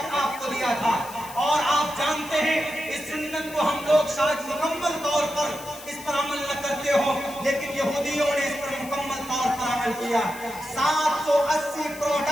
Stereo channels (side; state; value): left; noise; hiss, 16 dB below the sound